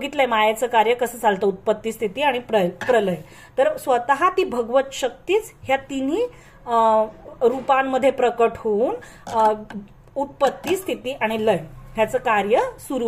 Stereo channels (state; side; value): identical; both; correlation 1.00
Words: मायेचं कार्य कसं चालतं, उत्पत्ती, स्थिती आणि प्रलय. तर स्वतः ती भगवत शक्तीच ह्या तिन्ही रूपांमध्ये प्रकट होऊन उत्पत्ती, स्थिती आणि लय ह्याचं कार्य